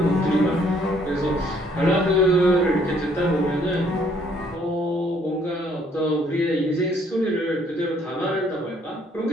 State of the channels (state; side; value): normal; both; correlation 0.64